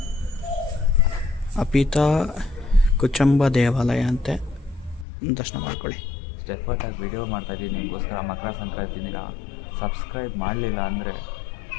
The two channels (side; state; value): right; drops out; at 5.1 s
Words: ಅಪಿತಾ ಕುಚಂಬ ದೇವಾಲಯ ಅಂತೆ, ದರ್ಶನ ಮಾಡ್ಕೊಳ್ಳಿ. ಸ್ಟೆಫರ್ಟಾಗಿ ವಿಡಿಯೋ ಮಾಡ್ತಾಯಿದ್ದೀನಿ ನಿಮಗೋಸ್ಕರ. ಮಕರ ಸಂಕ್ರಾಂತಿ ದಿನ ಸಬ್ಸ್ಕ್ರೈಬ್ ಮಾಡಲಿಲ್ಲ ಅಂದರೆ